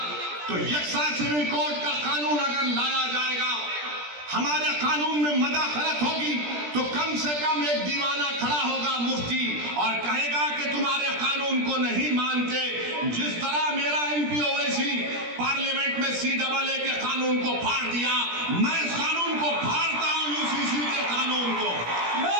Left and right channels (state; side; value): late; left; 17 ms